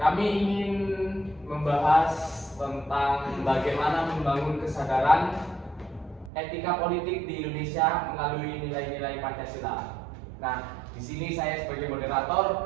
ingin membahas tentang bagaimana membangun kesadaran etika politik di Indonesia melalui nilai-nilai Pancasila. Nah, di sini saya sebagai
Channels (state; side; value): drops out; left; at 6.3 s